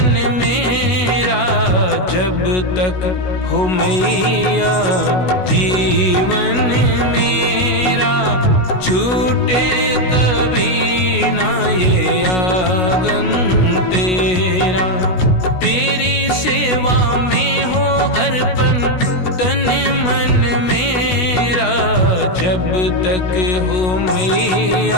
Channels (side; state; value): right; late; 16 ms